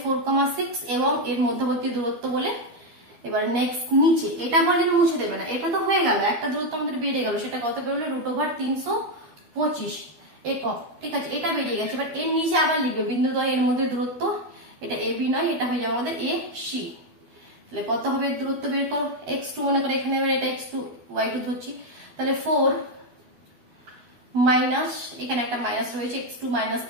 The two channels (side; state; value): left; late; 12 ms